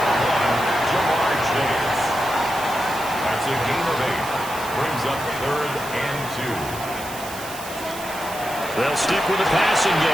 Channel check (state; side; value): noise; right; hiss, 13 dB below the sound